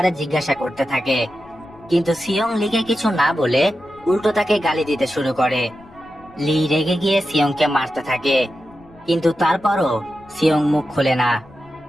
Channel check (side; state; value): left; noise; rumble, 27 dB below the sound